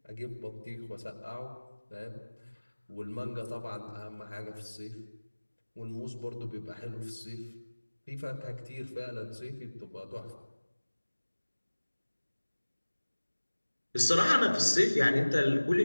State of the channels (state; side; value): inverted; both; correlation -1.00